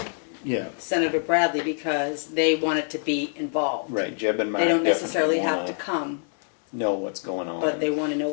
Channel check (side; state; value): right; silent; 56 dB below the other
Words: Yeah, Senator Bradley because they wanted to be involved. right. Jeb and Mark They don't definitely necessarily have wanna to come, know what's going on. but they want to know